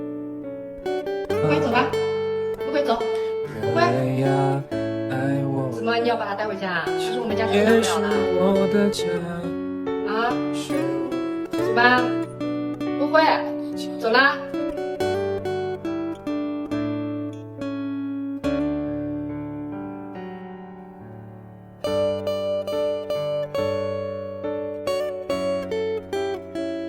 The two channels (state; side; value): identical; both; correlation 1.00